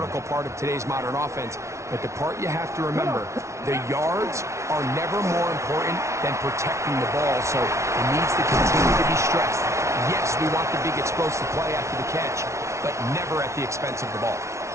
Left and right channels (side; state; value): left; late; 0.14 ms